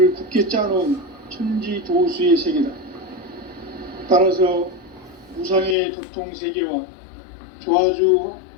굳게 짜놓은 천지 도수의 세계다. 따라서 무상의 도통 세계와 조화주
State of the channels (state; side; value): drops out; right; at 5.8 s